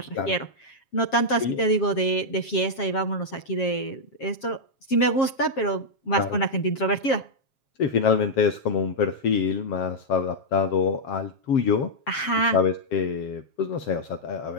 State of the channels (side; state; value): right; late; 7.4 ms